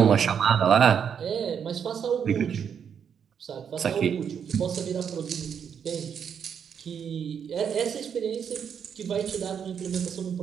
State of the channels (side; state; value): left; quieter; 7.7 dB